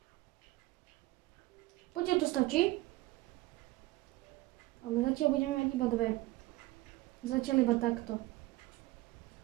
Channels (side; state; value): left; quieter; 18.8 dB